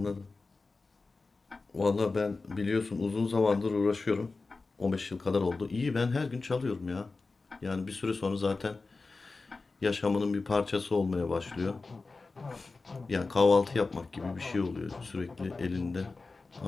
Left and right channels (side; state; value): right; quieter; 3.8 dB